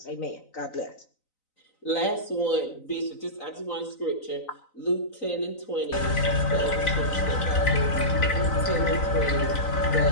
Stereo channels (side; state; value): right; late; 3.9 ms